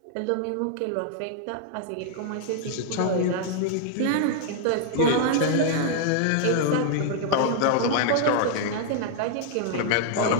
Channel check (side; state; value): both; different; correlation -0.01